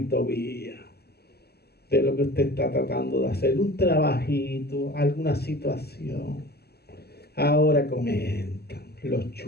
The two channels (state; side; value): late; right; 0.46 ms